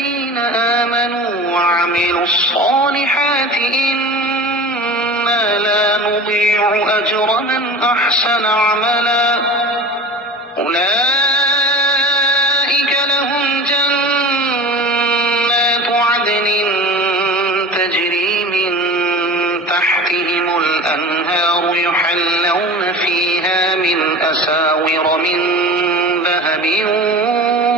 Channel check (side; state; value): both; normal; correlation 0.35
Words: آمنوا وعملوا الصالحات إنا لا نضيع أجر من أحسن عملا أولئك لهم جنات عدن تجري من تحتهم الأنهار يحلون فيها من أساور من ذهب